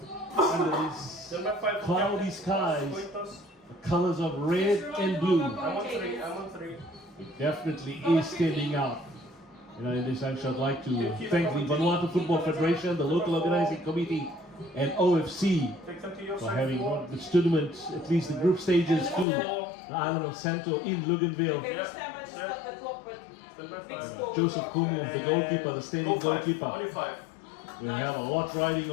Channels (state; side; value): drops out; right; at 19.2 s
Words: under these cloudy skies, the colors of red and blue definitely is standing out. You know, in this action, I'd like to thank the Vanuatu Football Federation, the local organizing committee, and OFC for having brought this tournament, at least the group stages, to the island of Santo in Luganville. Joseph Kumu, the goalkeeper, the standing goalkeeper. We have a lot riding